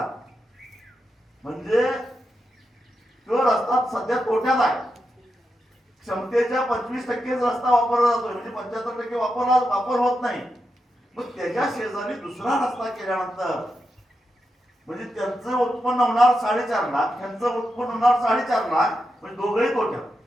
म्हणजे तो रस्ता सध्या तोट्यात आहे. क्षमतेच्या 25% रस्ता वापरला जातोय, म्हणजे 75% वापर होत नाही. मग त्याच्या शेजारी दुसरा रस्ता केल्यानंतर म्हणजे त्यांचं उत्पन्न होणार 4.5 लाख, त्यांचं उत्पन्न होणार 4.5 लाख, म्हणजे दोघंही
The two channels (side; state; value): both; normal; correlation 0.87